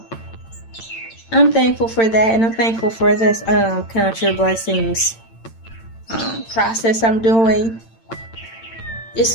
I'm thankful for that, and I'm thankful for this Contra Blessings process I'm doing. It's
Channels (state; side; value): late; right; 8.9 ms